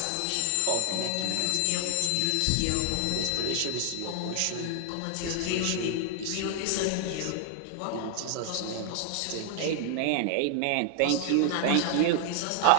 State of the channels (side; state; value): both; different; correlation 0.00